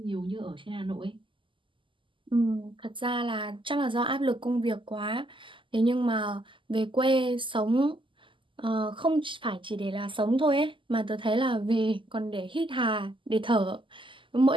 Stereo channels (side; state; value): left; late; 0.25 ms